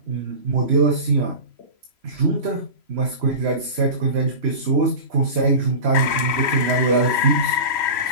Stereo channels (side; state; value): left; late; 3.0 ms